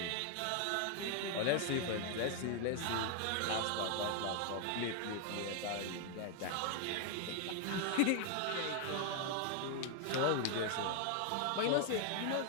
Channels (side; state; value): both; different; correlation 0.00